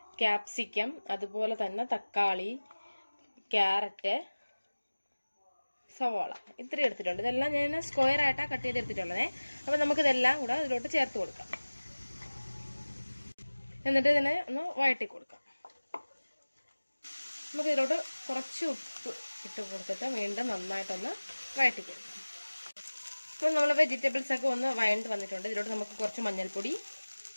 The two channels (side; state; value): both; inverted; correlation -1.00